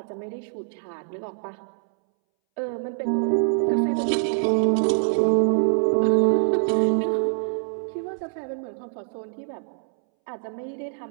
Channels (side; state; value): left; silent; 62 dB below the other